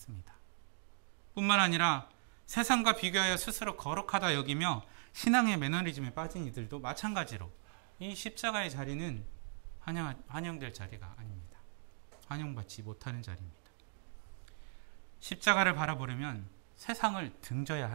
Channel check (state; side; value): silent; left; digital silence